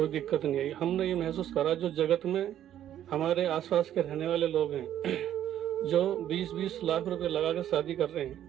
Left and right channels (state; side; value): quieter; left; 11.2 dB